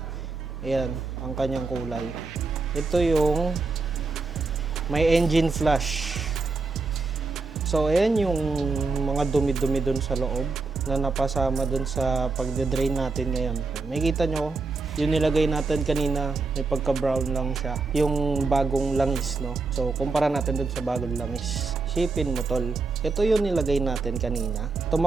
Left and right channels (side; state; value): left; quieter; 4.0 dB